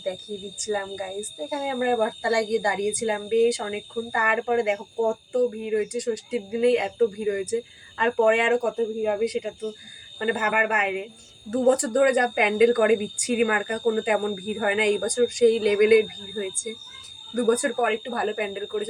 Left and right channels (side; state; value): both; identical; correlation 1.00